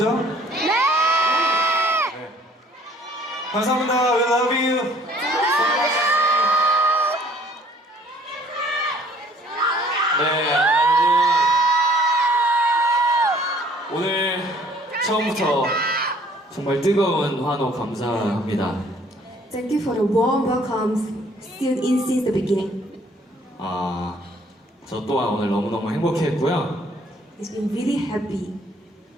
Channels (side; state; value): both; normal; correlation 0.57